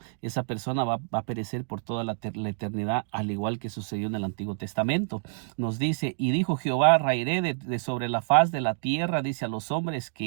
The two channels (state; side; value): silent; left; digital silence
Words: esa persona va a perecer por toda la eternidad, al igual que sucedió en el Antiguo Testamento. Nos dice: y dijo Jehová, raeré de sobre la faz de la tierra, dice, a los hombres